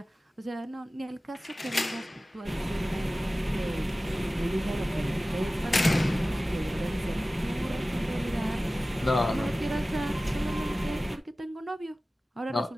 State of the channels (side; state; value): both; normal; correlation 0.96